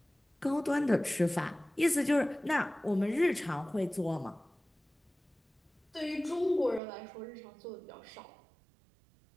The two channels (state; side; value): drops out; left; at 6.8 s